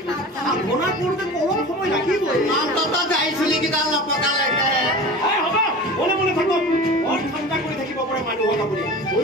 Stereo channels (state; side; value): normal; both; correlation 0.35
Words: সাধনা কৰোঁতে অলপ সময় লাগিবই অন্তত যাইছিলি কিটা লপকালৈকে হ'ব মনে মনে থাকক বৰ ঠাণ্ডা কৰি থাকিব পাৰে মানুহক আপুনি